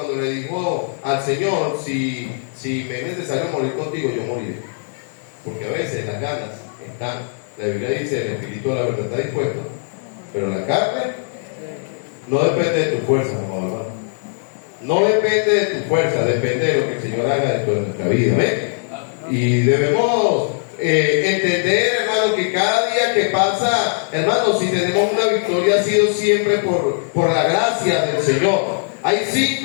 le dijo al Señor, si me es necesario morir contigo, yo moriré. Porque a veces las ganas están. La Biblia dice, el espíritu de la verdad está dispuesto, pero la carne no depende de tu fuerza, hermano. No depende de tu fuerza, depende de lo que el Señor haga dentro de nuestra vida. ¿Ven? Y debemos entender, hermano, que cada día que pasa, hermano, si tenemos una victoria ha sido siempre por la gracia del Señor. Hay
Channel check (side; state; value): right; silent; 66 dB below the other